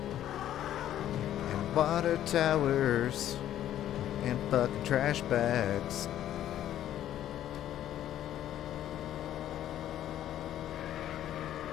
and water towers and fucking trash bags.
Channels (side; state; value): right; quieter; 11.8 dB